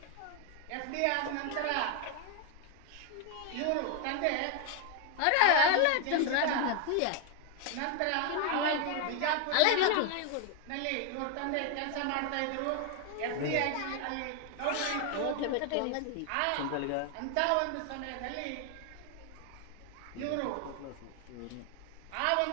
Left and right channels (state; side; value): different; both; correlation 0.01